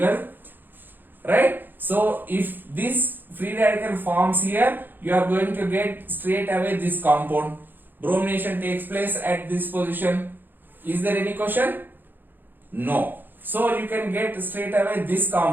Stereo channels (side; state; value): left; late; 0.092 ms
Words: right? So if this free radical forms here, you are going to get straight away this compound. Bromination takes place at this position. Is there any question? No. So you can get straight away this